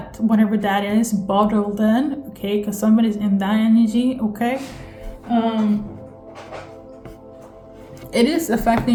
whatever that is, bottled in. Okay. Because somebody's in that energy. Okay. It is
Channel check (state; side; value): identical; both; correlation 1.00